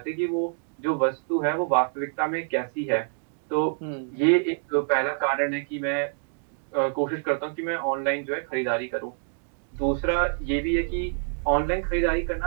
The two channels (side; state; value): left; silent; digital silence